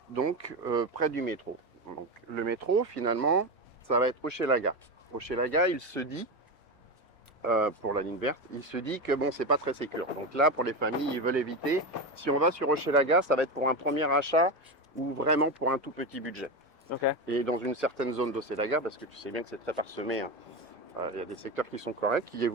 donc près du métro. Donc, le métro, finalement, ça va être Hochelaga. Hochelaga, il se dit, pour la ligne verte, il se dit que bon, c'est pas très sécure. Donc là, pour les familles, ils veulent éviter. Si on va sur Hochelaga, ça va être pour un premier achat ou vraiment pour un tout petit budget. Okay. Et dans une certaine zone d'Hochelaga, parce que tu sais bien que c'est très parsemé, hein. Il y a des secteurs qui sont corrects, qui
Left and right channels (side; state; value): both; normal; correlation 0.17